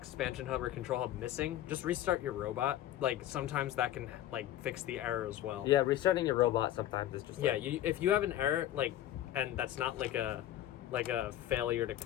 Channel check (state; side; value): quieter; right; 12.8 dB